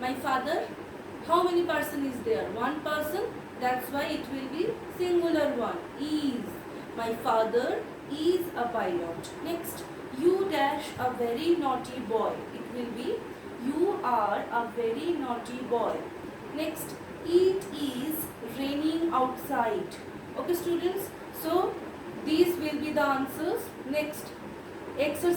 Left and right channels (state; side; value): identical; both; correlation 1.00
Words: father, how many person is there? One person. That's why it will be singular one. Is. My father is a pilot. Next, you dash a very naughty boy. It will be you are a very naughty boy. Next, it is raining outside. Okay students, so these will be the answers. Next,